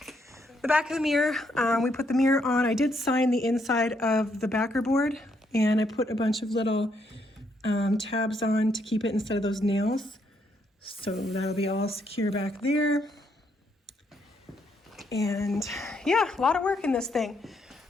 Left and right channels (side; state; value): both; normal; correlation 0.74